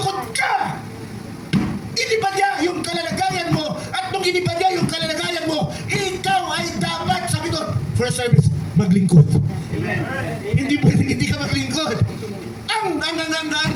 ka. Iniba niya yung kalalagayan mo. At nung iniba niya yung kalalagayan mo, ikaw ay dapat, sabi doon, for service, maglingkod. Amen. Hindi pwedeng hindi ka maglingkod. Ang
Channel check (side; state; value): both; identical; correlation 1.00